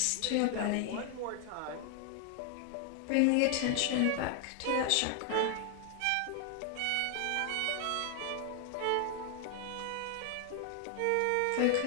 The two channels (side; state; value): both; different; correlation 0.00